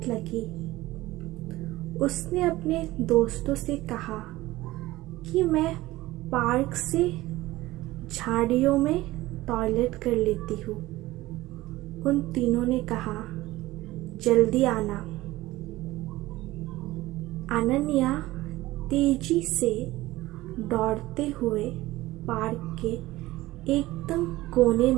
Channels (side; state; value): left; quieter; 17.9 dB